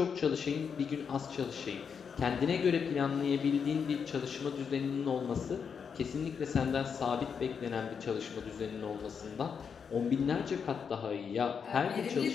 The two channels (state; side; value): quieter; right; 6.5 dB